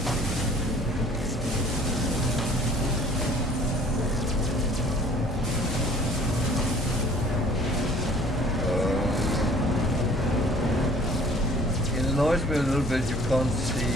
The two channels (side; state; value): both; normal; correlation 0.53